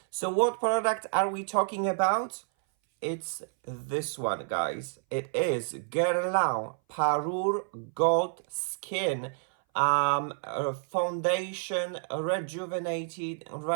So what product are we talking about? It's this one, guys. It is Guerlain Parure Gold Skin Foundation Rejuvenated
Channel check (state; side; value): silent; left; 58 dB below the other